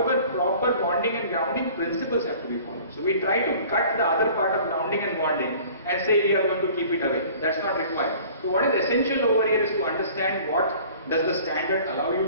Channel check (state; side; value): inverted; both; correlation -0.48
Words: proper bonding and grounding principles have to be followed. So we try to cut the other part of grounding and bonding and say we are going to keep it away. That's not required. So what is essential over here is to understand what does the standard allow you